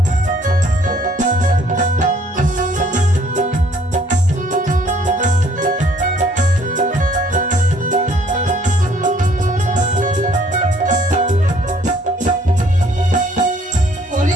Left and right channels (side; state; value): both; normal; correlation 0.61